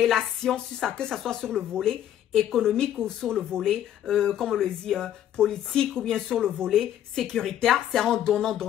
que ce soit sur le volet économique ou sur le volet, comme on le dit, politique ou bien sur le volet sécuritaire, c'est en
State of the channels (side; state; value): right; quieter; 11.1 dB